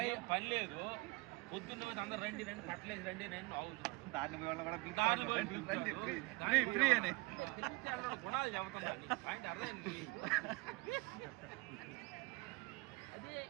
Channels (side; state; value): left; quieter; 24.0 dB